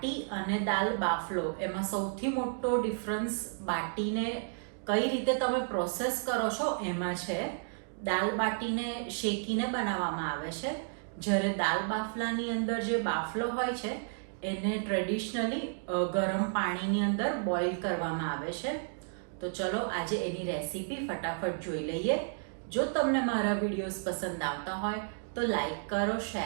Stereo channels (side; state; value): left; silent; digital silence